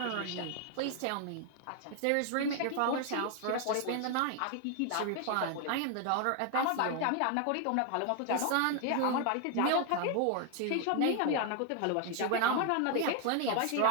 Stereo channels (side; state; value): both; different; correlation 0.01